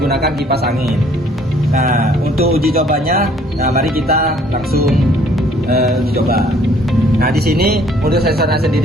kipas angin. Nah, untuk uji cobanya, mari kita langsung uji coba. Nah, di sini untuk sensornya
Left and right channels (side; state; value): both; normal; correlation 0.60